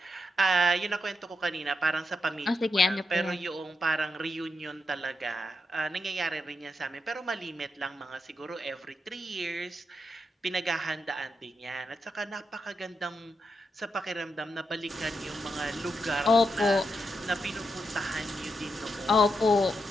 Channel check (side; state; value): both; normal; correlation 0.84